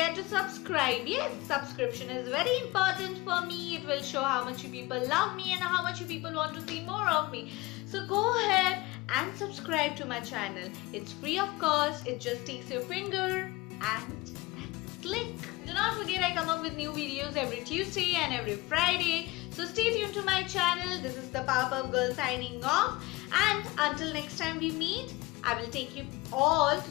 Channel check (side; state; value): right; quieter; 21.2 dB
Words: to subscribe. Yes, subscription is very important for me. It will show how much you people love me and how much you people want to see more of me. So go ahead and subscribe to my channel. It's free of cost. It just takes your finger and then click. Do not forget, I come up with new videos every Tuesday and every Friday. So stay tuned to my channel. This is the Powerpuff Girl signing off. And until next time we meet, I will take you all